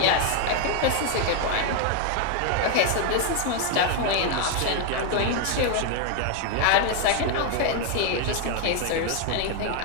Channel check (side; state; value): both; different; correlation 0.00